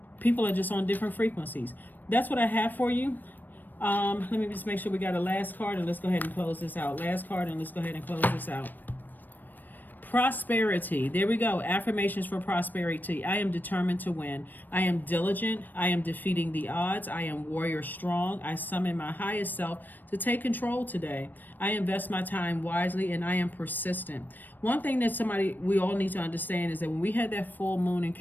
People are just on different frequencies. That's what I have for you. Let me just make sure we got a last card, and let's go ahead and close this out. Last card, and let's go ahead and close this out. Prosperity. There we go. Affirmations for prosperity. I am determined to win. I am diligent. I am defeating the odds. I am warrior strong. I summon my highest self to take control today. I invest my time wisely, and I am persistent. One thing that we all need to understand is that when we had that full moon in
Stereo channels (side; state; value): right; late; 0.089 ms